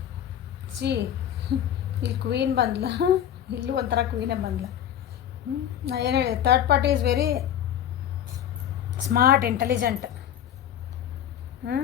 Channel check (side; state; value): right; quieter; 10.3 dB